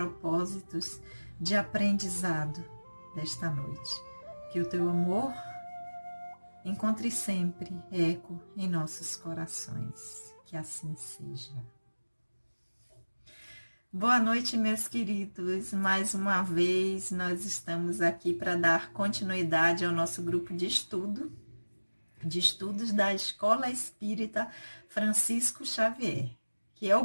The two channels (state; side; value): inverted; both; correlation -1.00